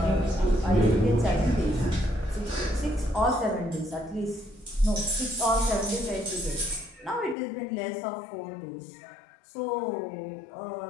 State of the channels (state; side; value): drops out; right; at 7.4 s